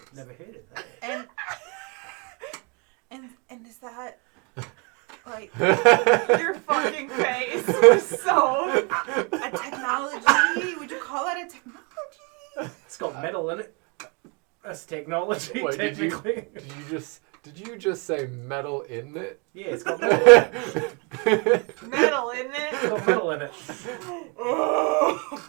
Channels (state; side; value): quieter; left; 32.6 dB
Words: Never heard of that. And is that like Your fucking face was so. a technology? Would you call that a technology? It's got metal in it. That's technology, Wait, technically. did you just say metal in it? Yeah, it's got metal in it. Metal, isn't It's it? got metal in it.